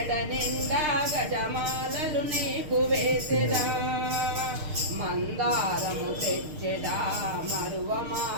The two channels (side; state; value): left; late; 6.5 ms